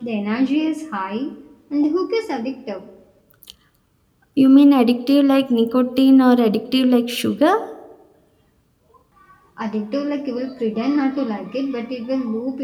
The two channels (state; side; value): identical; both; correlation 1.00